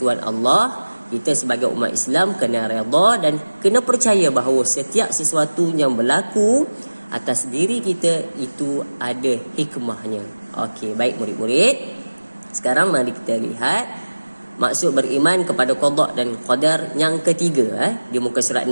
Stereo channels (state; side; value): inverted; both; correlation -1.00